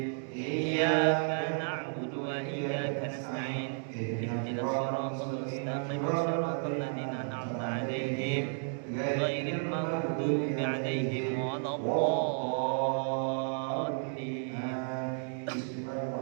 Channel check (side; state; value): left; silent; 56 dB below the other